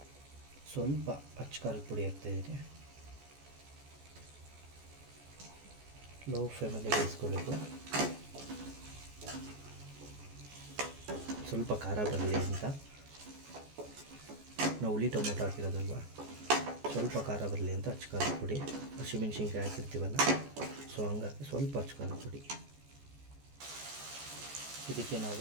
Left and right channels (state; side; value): late; left; 14 ms